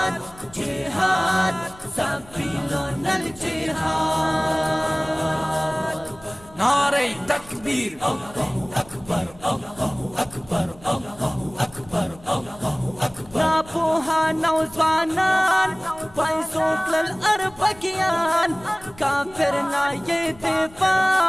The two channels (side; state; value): left; noise; rumble, 23 dB below the sound